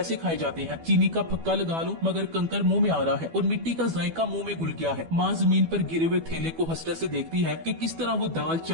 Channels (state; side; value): late; left; 12 ms